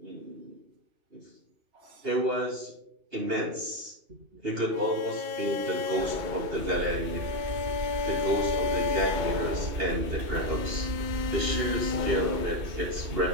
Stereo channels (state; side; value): late; left; 2.8 ms